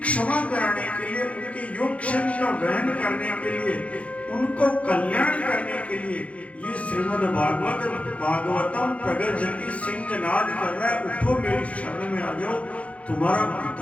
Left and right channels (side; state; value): right; late; 0.064 ms